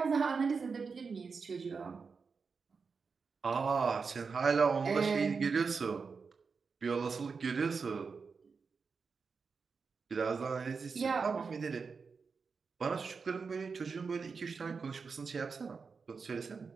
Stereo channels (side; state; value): left; quieter; 5.1 dB